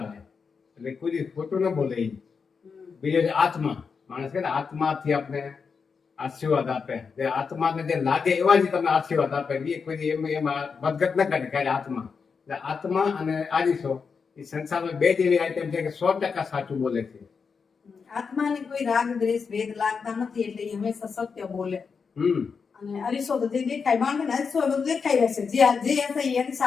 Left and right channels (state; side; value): quieter; right; 5.6 dB